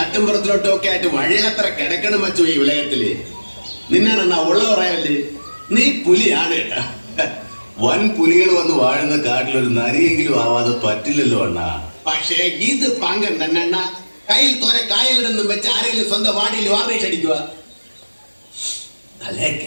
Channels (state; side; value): inverted; both; correlation -1.00